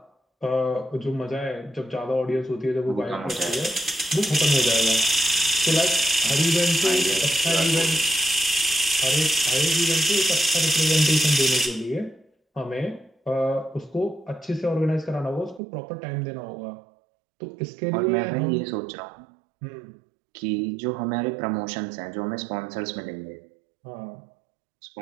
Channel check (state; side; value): drops out; left; at 15.6 s